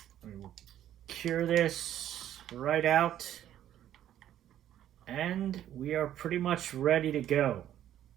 We will cure this right out. And we are pretty much ready to go.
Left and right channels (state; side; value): quieter; left; 11.5 dB